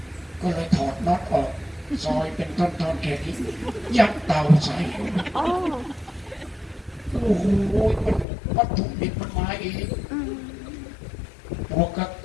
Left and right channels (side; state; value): right; drops out; at 8.2 s